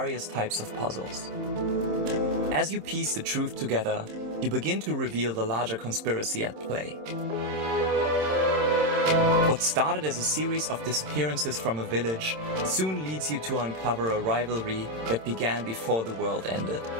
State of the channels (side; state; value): left; late; 26 ms